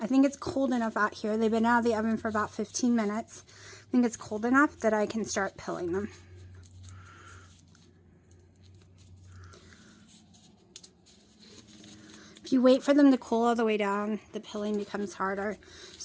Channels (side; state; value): both; identical; correlation 1.00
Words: think it's cold enough out here. They've been out of the oven for about 15 minutes. I think it's cold enough that I can start pilling them. If you wait for them to cool all the way down, the pilling becomes harder.